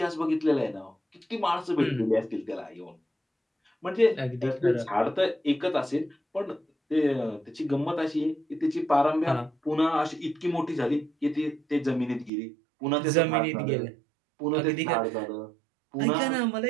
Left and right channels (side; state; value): left; drops out; at 12.3 s